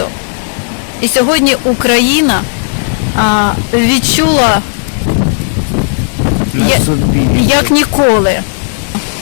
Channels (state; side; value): silent; right; digital silence